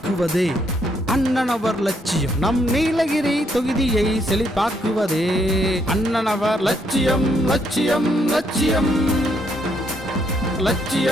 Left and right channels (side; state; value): both; normal; correlation 0.73